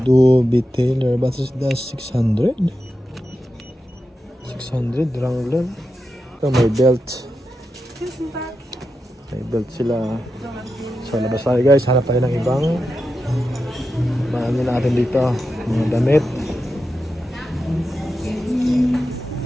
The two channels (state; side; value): normal; both; correlation 0.89